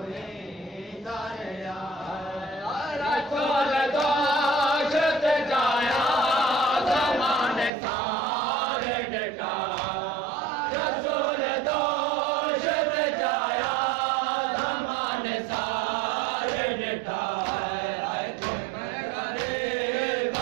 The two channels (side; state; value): left; drops out; at 7.7 s